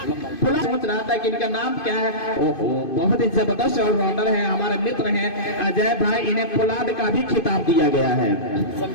सोच रहा था कि इनका नाम क्या है। ओहो, बहुत ही जबरदस्त ऑलराउंडर है, हमारे मित्र हैं अजय भाई। इन्हें पोलार्ड का भी खिताब दिया गया है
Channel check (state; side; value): late; right; 2.5 ms